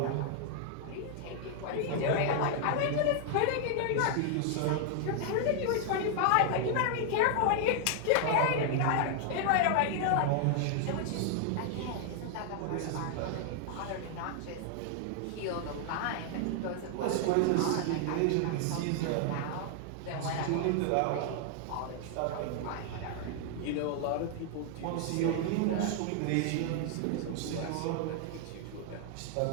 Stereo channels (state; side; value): different; both; correlation 0.00